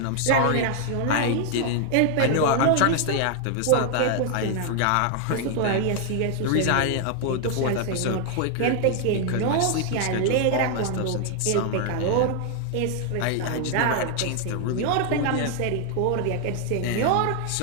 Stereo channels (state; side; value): different; both; correlation 0.00